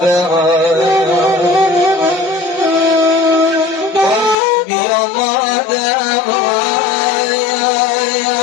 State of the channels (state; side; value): drops out; right; at 4.4 s